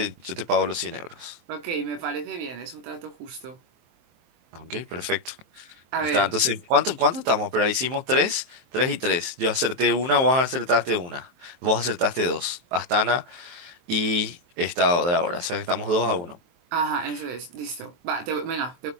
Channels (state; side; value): late; left; 23 ms